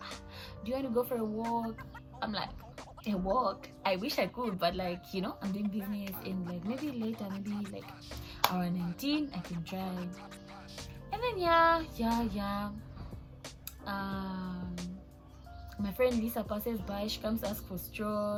do you want to go for a walk? I'm like, a walk? I wish I could, but like, I'm doing business, and like, maybe later, maybe like around 19, I can try. And then yeah. My friend Lisa passes by. She comes to ask for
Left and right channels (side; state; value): both; identical; correlation 1.00